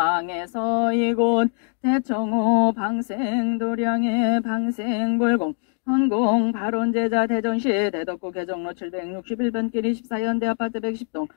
이곳 대청호 방생 도량의 방생불공 헌공 발원제자 대전시 대덕구 개정로 761번 길 24현대 아파트 110동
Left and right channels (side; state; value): right; silent; 56 dB below the other